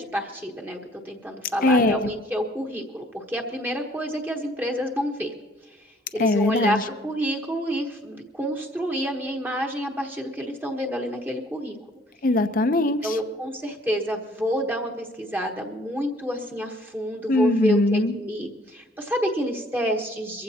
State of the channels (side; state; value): both; normal; correlation 0.59